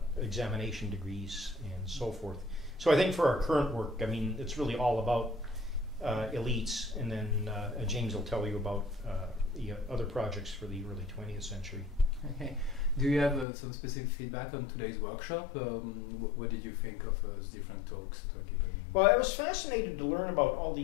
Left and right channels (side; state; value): right; drops out; at 13.5 s